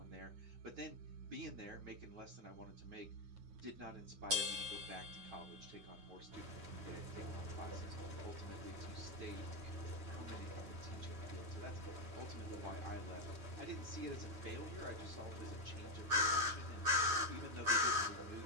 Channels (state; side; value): late; left; 9.6 ms